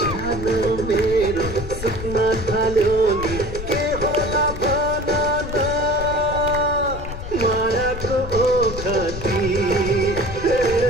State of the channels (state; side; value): noise; left; rumble, 8 dB below the sound